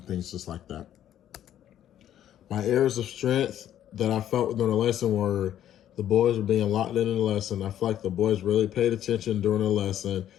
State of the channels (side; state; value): right; quieter; 11.2 dB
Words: things just like that. My areas of strength that I felt during the lesson were the boys were being locked in the lesson. I feel like the boys really paid attention during the lesson,